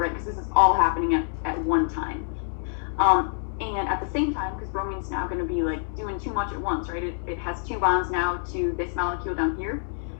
Because this is all happening at one time. And at the same time, because bromine's now going to be like doing too much at once, right? It has two bonds now to this molecule down here.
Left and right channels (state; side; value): silent; right; digital silence